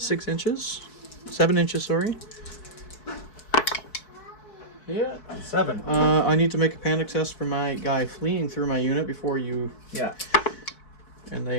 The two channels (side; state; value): right; late; 4.6 ms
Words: inches. 7 inches, sorry. Yeah. 7. I need to make a panic test for my guy fleeing through my unit before you... Yeah. And